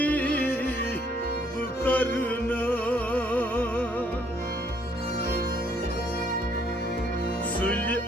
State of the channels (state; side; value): normal; both; correlation 0.66